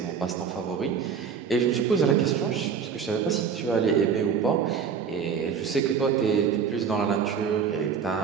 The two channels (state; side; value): quieter; left; 6.6 dB